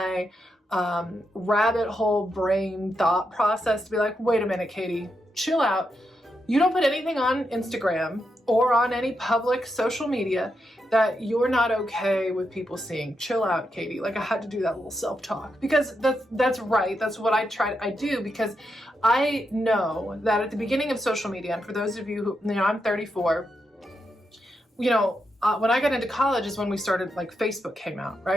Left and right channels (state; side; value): normal; both; correlation 0.84